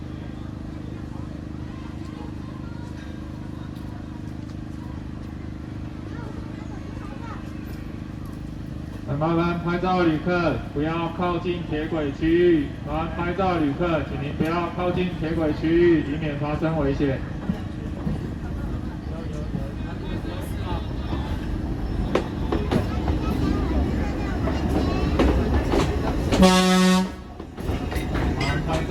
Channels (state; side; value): identical; both; correlation 1.00